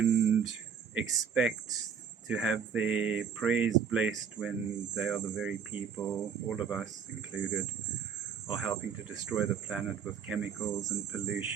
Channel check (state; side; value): quieter; left; 7.0 dB